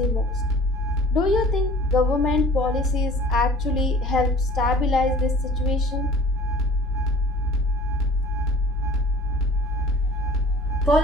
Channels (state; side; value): normal; both; correlation 0.47